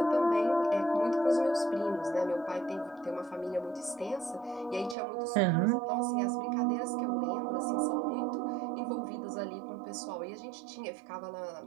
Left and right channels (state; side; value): drops out; left; at 5.0 s